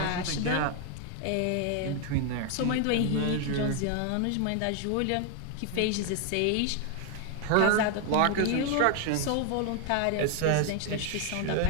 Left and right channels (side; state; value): both; different; correlation 0.01